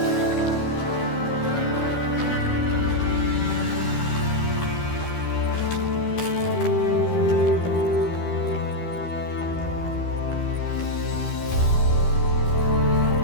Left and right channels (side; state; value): right; late; 13 ms